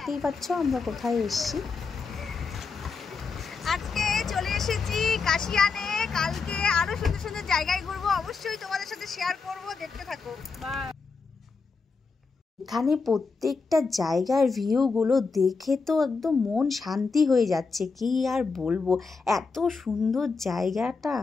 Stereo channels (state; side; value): quieter; right; 4.7 dB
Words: পাচ্ছ আমরা কোথায় এসেছি। আজকে চলে এসেছি কাশিয়ানে। কালকে আরো সুন্দর সুন্দর জায়গায় ঘুরবো, অবশ্যই তোমাদের সাথে শেয়ার করব, দেখতে থাকো। এখানে প্রত্যেকটা জায়গার ভিউগুলো দেখে তো একদম মন শান্তি হয়ে যাচ্ছে, কি আর বলবো, এত সুন্দর জায়গাটা।